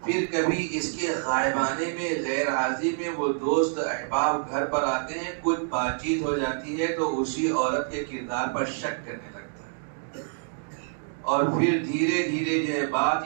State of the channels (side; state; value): left; silent; digital silence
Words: پھر کبھی اس کے غائبانے میں غیر حاضری میں وہ دوست احباب گھر پر آتے ہیں، کچھ بات چیت ہو جاتی ہے تو اسی عورت کے کردار پر شک کرنے لگتا ہے، اور پھر دھیرے دھیرے جو ہے بات